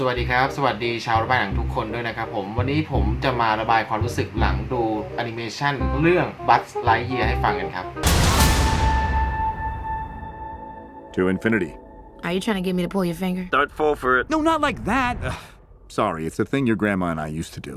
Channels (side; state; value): both; identical; correlation 1.00